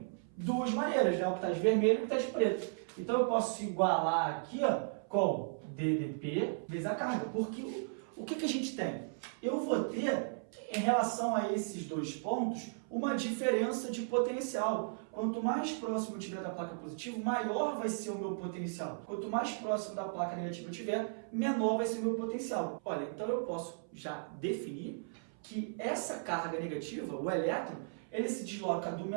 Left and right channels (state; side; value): silent; left; 54 dB below the other